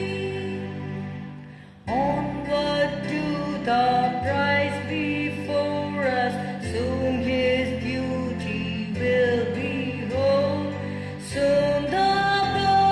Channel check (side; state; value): both; identical; correlation 1.00